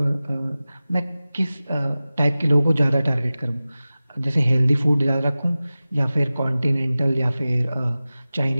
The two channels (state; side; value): inverted; both; correlation -0.96